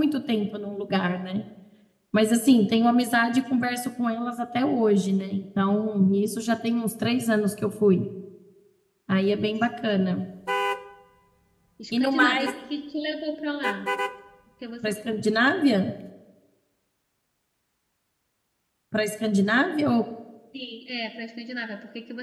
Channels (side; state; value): both; identical; correlation 1.00